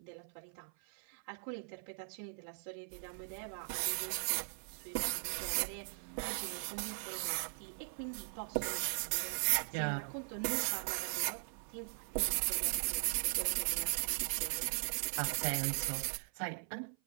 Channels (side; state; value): left; silent; 51 dB below the other